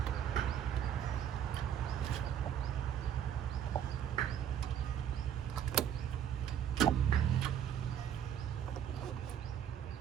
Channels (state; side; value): quieter; left; 9.3 dB